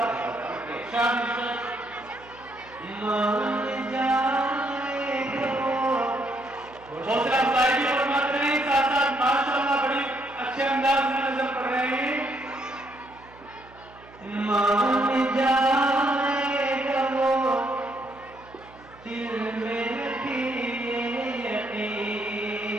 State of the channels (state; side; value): noise; right; hum, 23 dB below the sound